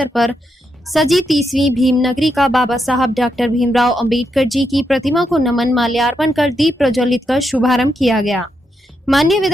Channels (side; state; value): both; normal; correlation 0.82